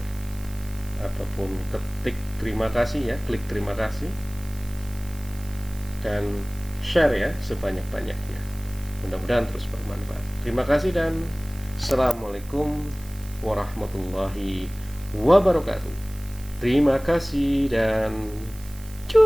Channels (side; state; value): right; noise; hiss, 21 dB below the sound